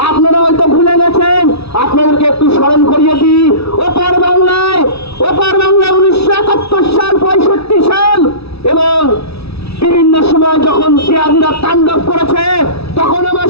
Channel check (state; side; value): late; right; 0.78 ms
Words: আপনারা হয়তো ভুলে গেছেন। আপনাদেরকে একটু স্মরণ করিয়ে দিই, ওপার বাংলায় 1971 সাল, 65 সাল এবং বিভিন্ন সময় যখন জিয়াদিরা তাণ্ডব করেছে, তখন আমার